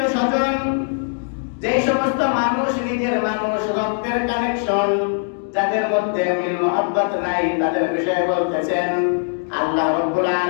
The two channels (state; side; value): silent; right; 58 dB below the other